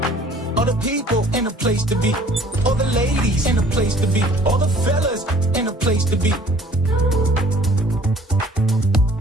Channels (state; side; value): normal; both; correlation 0.54